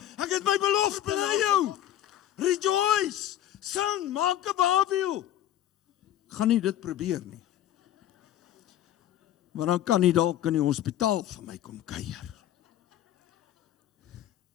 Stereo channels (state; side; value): quieter; right; 12.0 dB